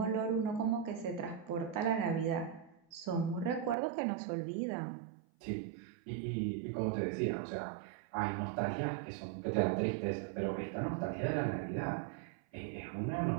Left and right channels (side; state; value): left; drops out; at 3.8 s